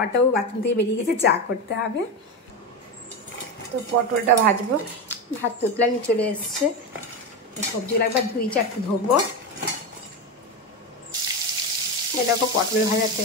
বাথরুম থেকে বেরিয়ে গেছে, চা করতে হবে। তো পটলটা ভাজবো, ভাত তুতলানি চলে এসছে। সবজিগুলো একবার 2-4টে ধোবো। এরকম পটল ভাজা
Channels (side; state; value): both; normal; correlation 0.16